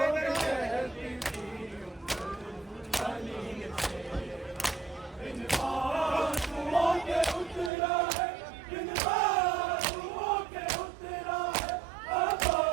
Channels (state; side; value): drops out; left; at 7.7 s